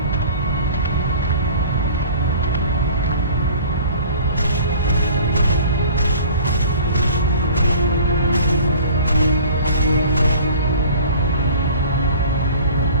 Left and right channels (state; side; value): inverted; both; correlation -0.47